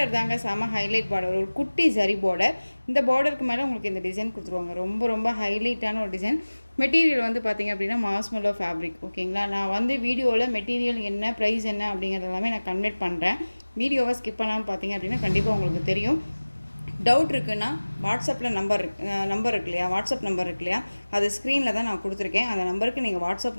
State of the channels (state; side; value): inverted; both; correlation -1.00